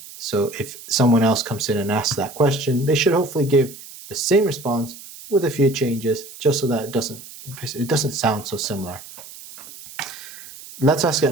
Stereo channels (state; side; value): noise; right; hiss, 16 dB below the sound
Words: So if someone else comes in and asks that question, they should hopefully give the same response with a few changes, just so that it doesn't sound so similar. Let's ask